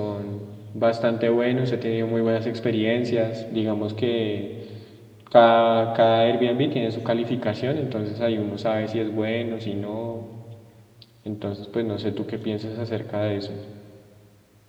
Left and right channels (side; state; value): both; identical; correlation 1.00